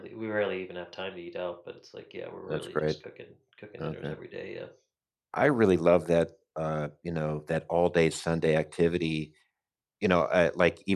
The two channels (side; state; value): both; identical; correlation 1.00